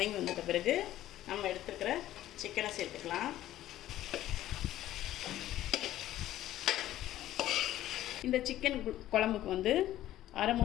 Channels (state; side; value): quieter; right; 13.7 dB